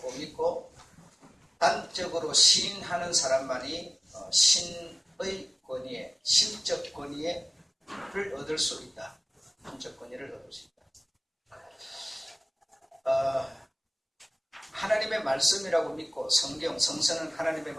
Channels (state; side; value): identical; both; correlation 1.00